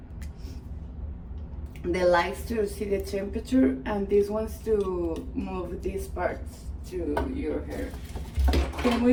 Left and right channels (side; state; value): both; identical; correlation 1.00